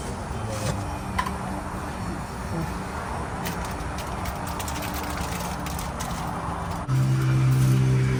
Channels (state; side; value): identical; both; correlation 1.00